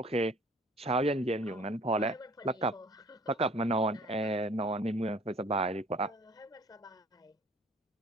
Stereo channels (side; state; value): both; normal; correlation 0.52